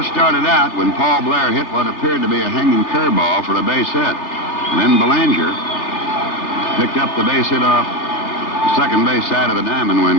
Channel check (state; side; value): late; right; 3.3 ms